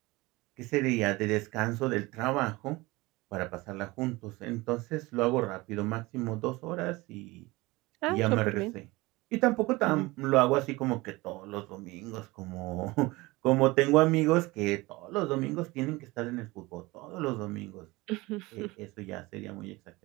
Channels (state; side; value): quieter; left; 21.8 dB